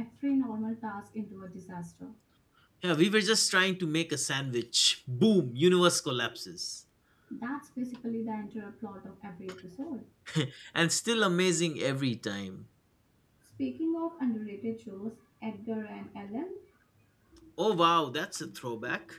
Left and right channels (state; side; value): identical; both; correlation 1.00